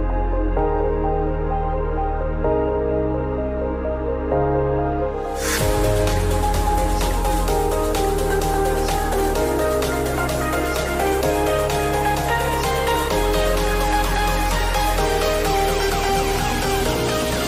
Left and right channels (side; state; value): both; identical; correlation 1.00